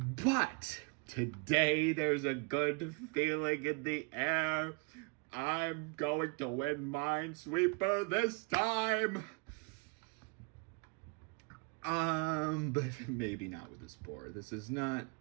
today there's a good feeling in the air. I'm going to win Minesweeper this time. But maybe not with this board. This is not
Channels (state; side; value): quieter; left; 32.1 dB